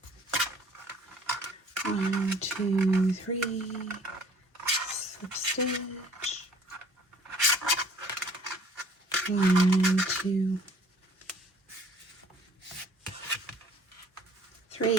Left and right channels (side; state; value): both; normal; correlation 0.54